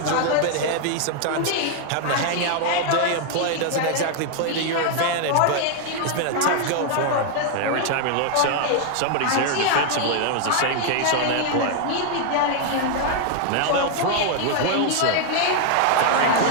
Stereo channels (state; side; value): different; both; correlation 0.00